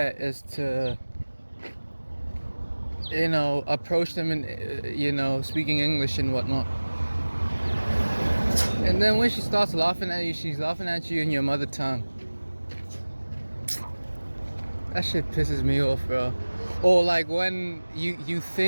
is to approach them in speaking English and whatnot. And then when she starts laughing at you, she's laughing at you in your mother tongue. That shit pisses me off, bro. Or like when you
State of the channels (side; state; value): both; inverted; correlation -1.00